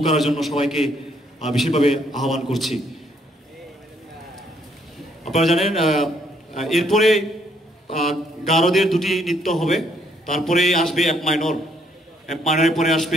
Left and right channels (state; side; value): normal; both; correlation 0.69